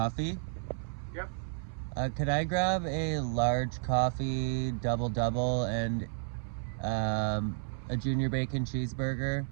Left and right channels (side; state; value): left; silent; 56 dB below the other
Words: Yep. Could I grab a large coffee, double, and a junior bacon cheeseburger?